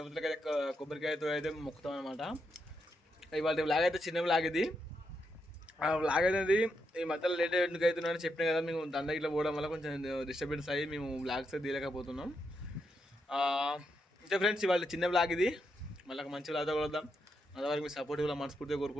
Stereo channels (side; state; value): both; normal; correlation 0.82